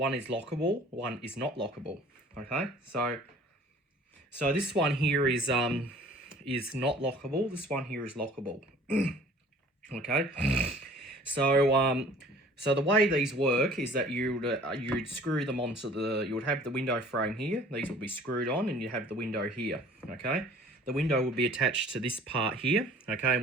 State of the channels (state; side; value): normal; both; correlation 0.50